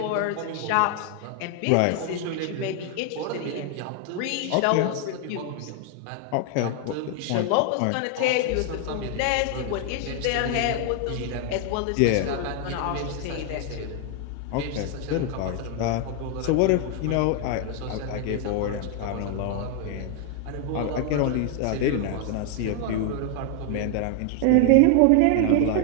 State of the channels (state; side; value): different; both; correlation 0.00